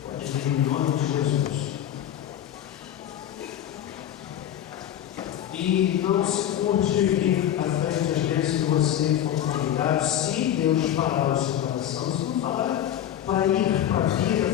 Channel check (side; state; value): right; quieter; 10.9 dB